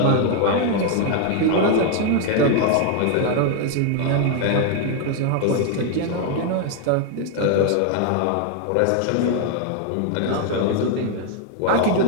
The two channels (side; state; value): both; different; correlation 0.00